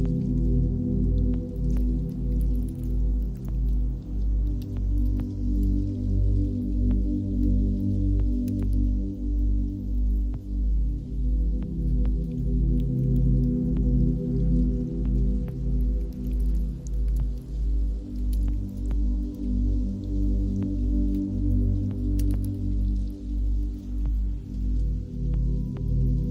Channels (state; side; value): identical; both; correlation 1.00